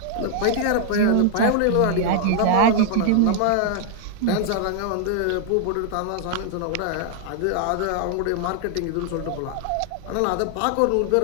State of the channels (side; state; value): both; different; correlation 0.00